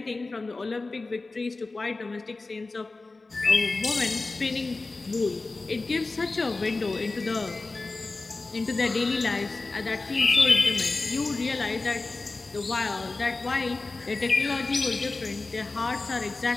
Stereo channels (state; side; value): quieter; right; 3.5 dB